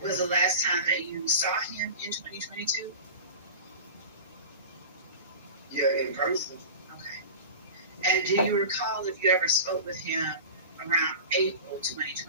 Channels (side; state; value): both; inverted; correlation -0.33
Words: Was the last time that you saw him 2022? Yeah, in person. Okay. And do you recall if you ever spoke with him around April